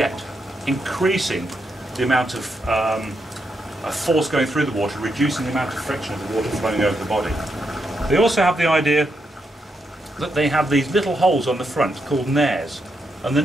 increasing the amount of force going through the water, reducing the amount of friction of the water flowing over the body. They also have the idea that they have these little holes on the front called nares, and the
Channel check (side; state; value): both; normal; correlation 0.82